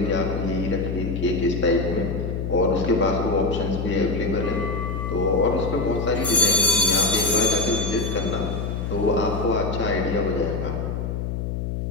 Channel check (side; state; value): left; noise; hum, 3 dB below the sound